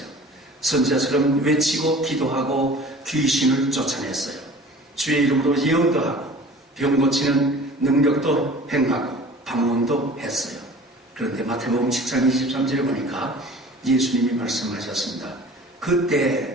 선지자처럼 외치고 기도하고 귀신을 쫓아냈어요. 주의 이름으로 예언도 하고 병 고치는 능력도 행하고 방언도 했어요. 그런데 마태복음 7장 23절에 보니까 예수님이 말씀하셨습니다.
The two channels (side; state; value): both; normal; correlation 0.44